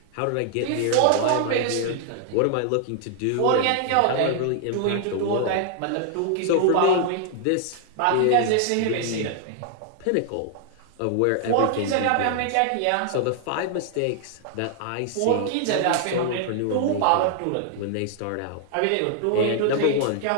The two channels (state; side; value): different; both; correlation 0.00